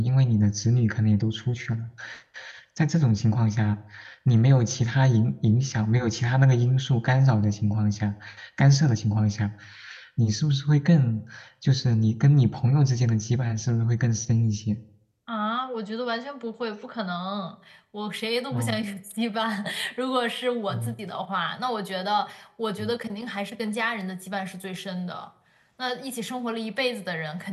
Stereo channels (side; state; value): both; identical; correlation 1.00